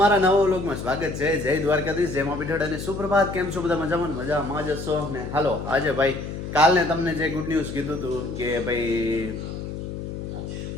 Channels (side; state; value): left; noise; hum, 7 dB below the sound